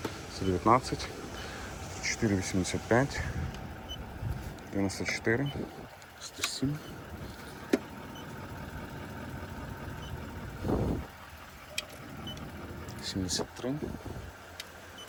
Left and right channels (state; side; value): identical; both; correlation 1.00